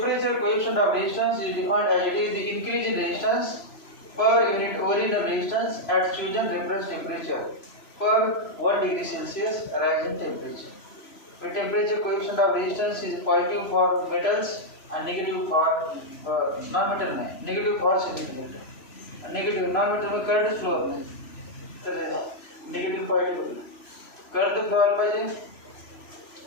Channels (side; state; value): right; late; 3.0 ms